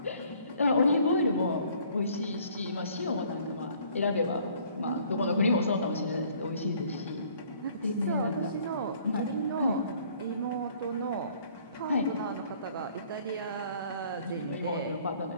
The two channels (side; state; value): both; inverted; correlation -0.58